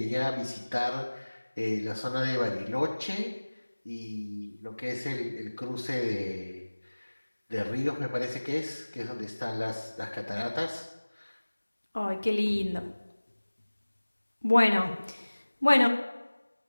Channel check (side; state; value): both; inverted; correlation -1.00